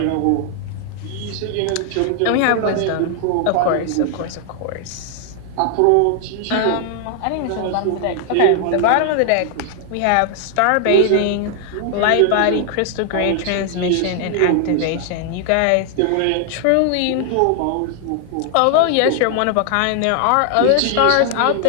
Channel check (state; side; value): different; both; correlation 0.00